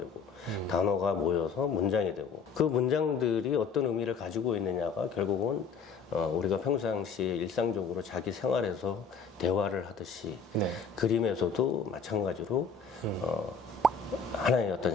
단어가 모여서 문장이 되고 그 문장들이 어떤 의미를 가지고 있느냐가 결국은 우리가 평상시에 일상적으로 자기 생활에서 대화를 하듯이 네. 그림에서도 마찬가지로 하나의 어떤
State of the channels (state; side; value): quieter; right; 5.3 dB